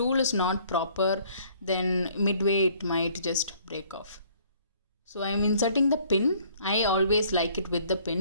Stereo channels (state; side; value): inverted; both; correlation -0.59